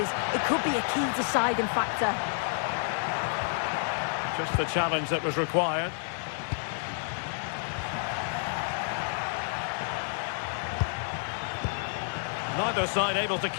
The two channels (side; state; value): right; silent; digital silence